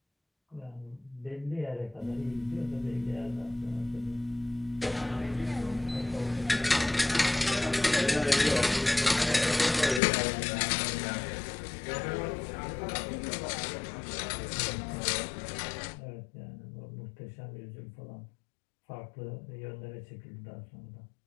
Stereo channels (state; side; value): drops out; right; at 10.0 s